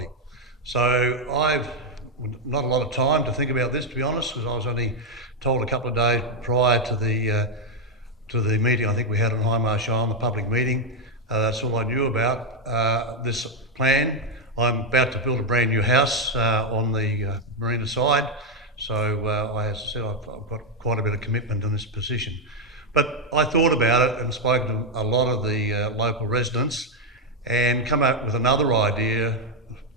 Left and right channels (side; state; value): both; normal; correlation 0.03